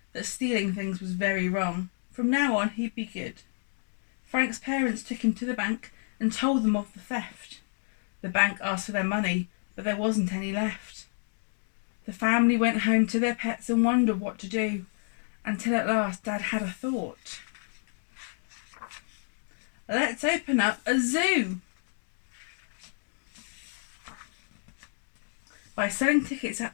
that stealing things was very wrong. From now on, he'd be good. Frank's parents took him to the bank and told them of the theft. The bank asked for their money, but there wasn't any left. The family went home to their pets and wondered what to do, until at last Dad had a thought. Let's open up a zoo. By selling tickets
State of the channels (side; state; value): right; silent; 58 dB below the other